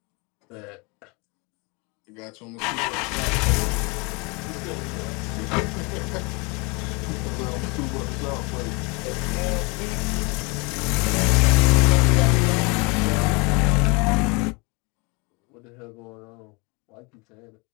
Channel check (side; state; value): right; quieter; 29.3 dB